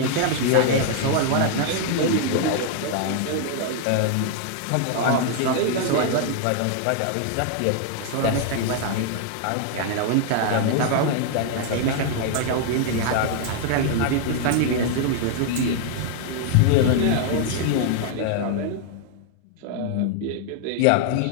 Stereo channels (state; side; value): different; both; correlation 0.00